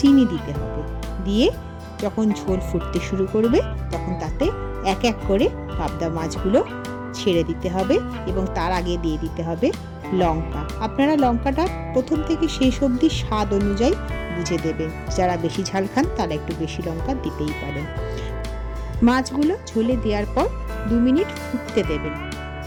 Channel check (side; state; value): both; identical; correlation 1.00